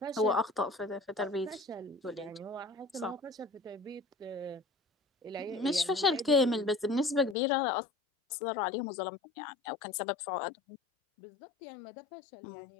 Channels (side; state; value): right; drops out; at 7.4 s